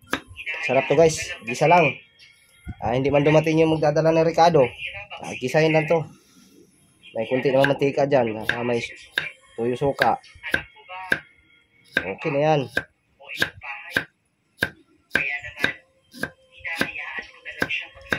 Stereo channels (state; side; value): identical; both; correlation 1.00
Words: Sarap to guys, gisa lang. Hindi man dumating yung magdadala ng Ricardo. Gisahin lang to. May kunti naman mantika dyan. May tuyo suka. Anak mo ba? Okay na yan. O ibang bahay? Kaya naman, hinahayaan ko na lang siya